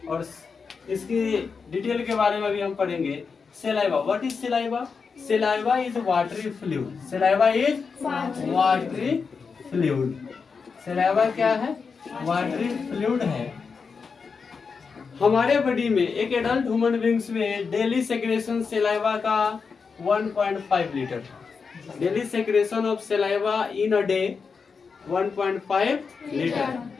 और इसकी डिटेल के बारे में भी हम पढ़ेंगे। saliva, what is saliva? Saliva is watery fluid। saliva is watery fluid। Saliva क्या है? वाटरी फ्लूइड है। हमारे बॉडी में एक एडल्ट ह्यूमन बींग्स में डेली सेक्रेशन सलाइवा का 1.5 litre. Daily secretion of saliva in a day 1.5 litre.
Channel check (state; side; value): quieter; right; 5.3 dB